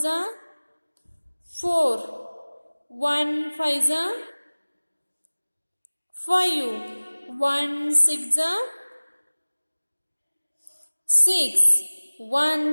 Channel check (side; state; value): both; inverted; correlation -1.00